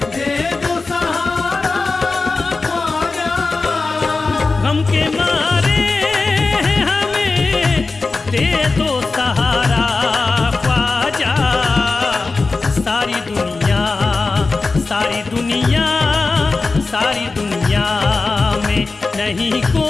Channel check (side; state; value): right; quieter; 3.8 dB